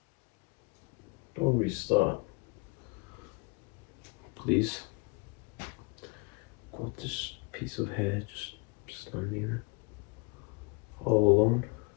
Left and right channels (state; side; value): quieter; right; 29.1 dB